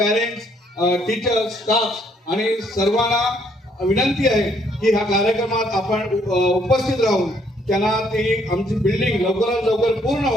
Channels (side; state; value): both; normal; correlation 0.67